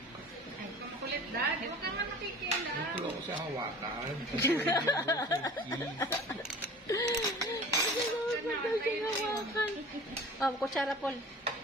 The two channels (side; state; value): both; normal; correlation 0.42